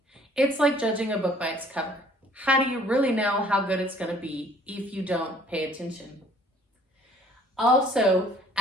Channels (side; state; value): both; normal; correlation 0.57